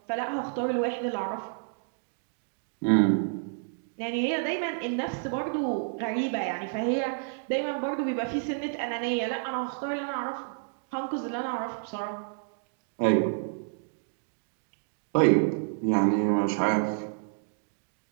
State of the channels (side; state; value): left; silent; digital silence